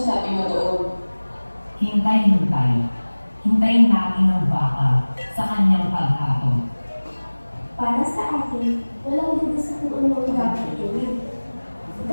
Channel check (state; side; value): inverted; both; correlation -1.00